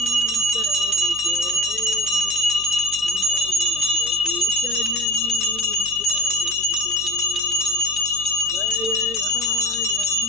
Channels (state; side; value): noise; right; hum, 20 dB below the sound